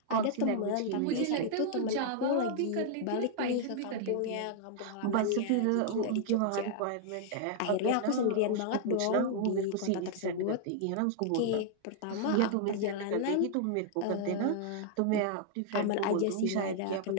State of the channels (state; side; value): different; both; correlation -0.01